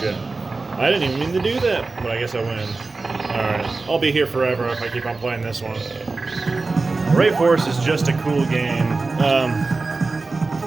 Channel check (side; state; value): left; quieter; 3.7 dB